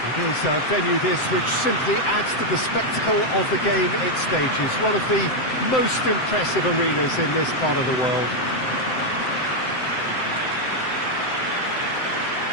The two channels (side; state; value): right; late; 7.8 ms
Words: It is a venue this which simply adds to the spectacle of the game it stages, one of the most impressive arenas in this part of the world.